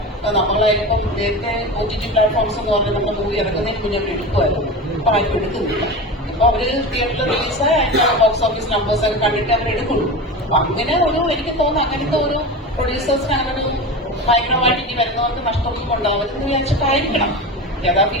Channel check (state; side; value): normal; both; correlation 0.27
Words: നമ്മളായാലും നേരത്തെ OTT പ്ലാറ്റ്ഫോംസ് എന്ന് പറഞ്ഞാൽ നമ്മുടെ മൂവി ഇറങ്ങുന്നതിന് മുന്നേ എടുക്കുമായിരുന്നു. ഇപ്പൊ ആരും എടുക്കുന്നില്ല. ഇപ്പൊ അവര് തിയേറ്ററിൽ റിലീസായ ബോക്സ് ഓഫീസ് നമ്പേഴ്സ് ഒക്കെ കണ്ടിട്ട് അവർ എടുക്കുള്ളൂ. അങ്ങനെ എനിക്ക് തോന്നുന്നു അങ്ങനത്തെ ഒരു പ്രൊഡ്യൂസേഴ്സിന് അങ്ങനെ ഒരു ഭയങ്കരമായിട്ട് ഇനി വരുന്നവർക്ക് നഷ്ടമൊന്നും ഉണ്ടാവരുതെന്ന് വിചാരിച്ചിട്ടായിരിക്കണം യഥാ